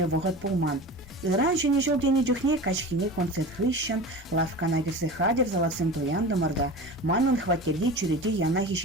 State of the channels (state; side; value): normal; both; correlation 0.32